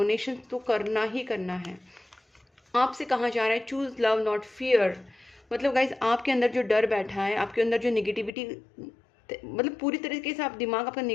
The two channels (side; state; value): right; drops out; at 8.3 s